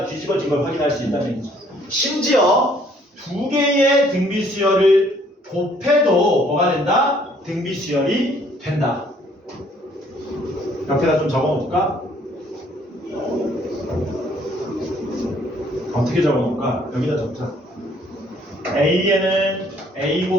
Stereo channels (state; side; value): normal; both; correlation 0.62